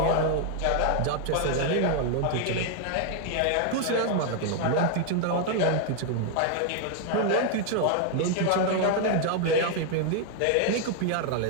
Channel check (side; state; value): both; different; correlation 0.00